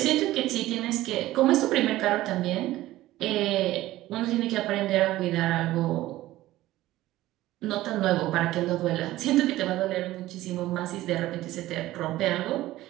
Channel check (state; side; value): quieter; left; 16.1 dB